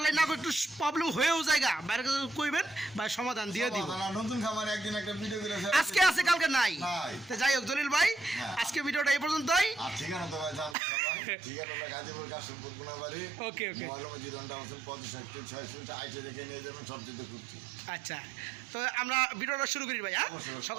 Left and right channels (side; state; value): left; drops out; at 10.8 s